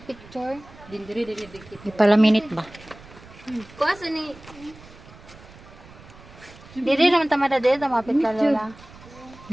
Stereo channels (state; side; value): noise; right; rumble, 21 dB below the sound